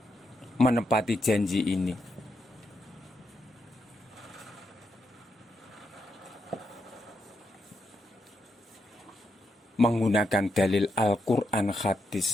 Menepati janji ini menggunakan dalil Al-Quran,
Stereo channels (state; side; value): normal; both; correlation 0.82